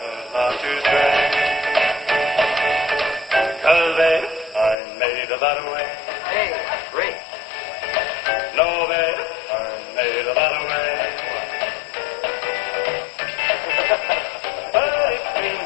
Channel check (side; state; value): right; drops out; at 4.8 s